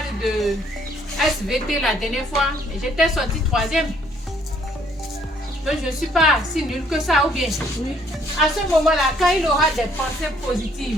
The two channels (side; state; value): both; normal; correlation 0.64